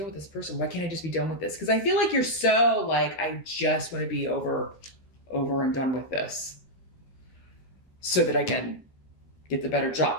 with this person? Why can't I just be done with this? Because I feel like you're so I just want to be over and done with this so that I can get the better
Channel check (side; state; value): right; late; 12 ms